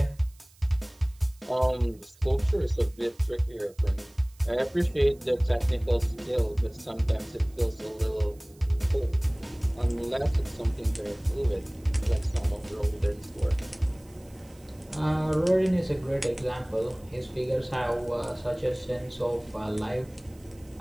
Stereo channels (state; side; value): noise; right; hiss, 28 dB below the sound